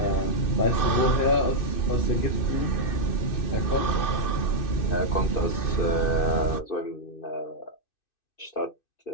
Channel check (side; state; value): right; late; 2.6 ms